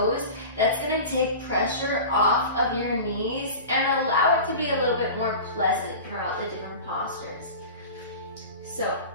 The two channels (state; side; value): inverted; both; correlation -0.34